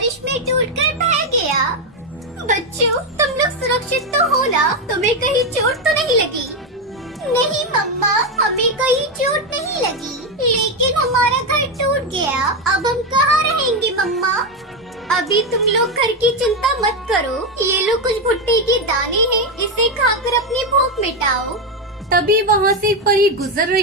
में टूटकर बह गया। बच्चों, तुम लोग सुरक्षित तो हो ना? तुम्हें कहीं चोट तो नहीं लगी? नहीं मम्मा, हमें कहीं चोट नहीं लगी, लेकिन हमारा घर टूट गया। अब हम कहाँ रहेंगे मम्मा? अभी तुम लोग घर की चिंता मत करो। ये लो कुछ भुट्टे के दाने हैं, इसे खाकर अपनी भूख मिटाओ। तभी वहाँ से एक परी गुजर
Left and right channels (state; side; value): normal; both; correlation 0.08